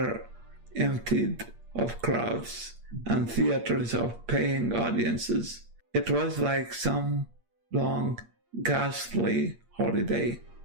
emptied of crowds and theaters of paying audiences. It was like some long, ghastly holiday.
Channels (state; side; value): late; left; 8.6 ms